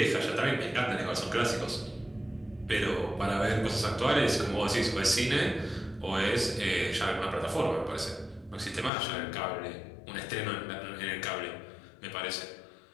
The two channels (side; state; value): right; drops out; at 8.9 s